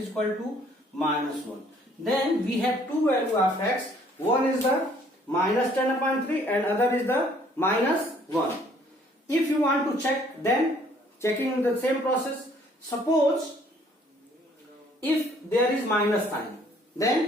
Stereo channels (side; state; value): both; normal; correlation 0.61